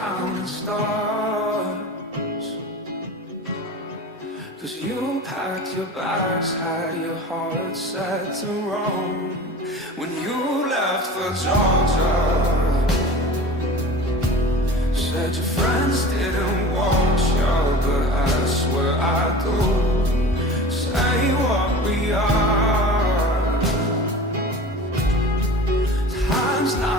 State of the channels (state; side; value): normal; both; correlation 0.37